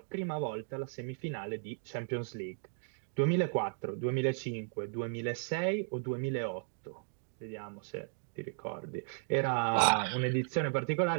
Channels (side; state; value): left; silent; digital silence